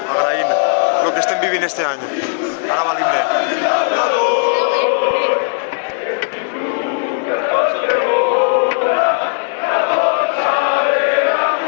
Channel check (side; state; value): right; silent; 62 dB below the other